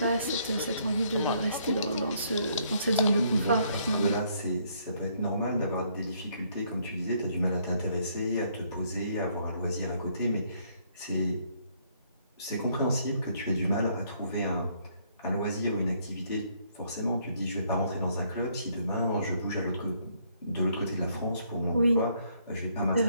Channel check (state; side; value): inverted; both; correlation -0.69